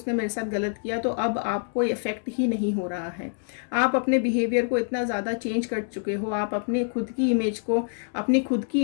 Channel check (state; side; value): silent; right; digital silence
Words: मेरे साथ गलत किया तो अब आपको इफेक्ट ही नहीं हो रहा है। आप अपने बिहेवियर को इतना ज़्यादा चेंज कर चुके हो, आप अपने खुद की इमेज को, अपनी खुद